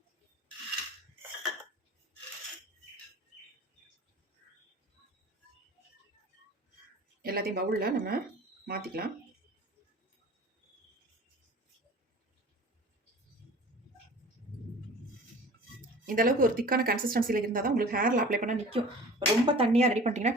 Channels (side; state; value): both; normal; correlation 0.43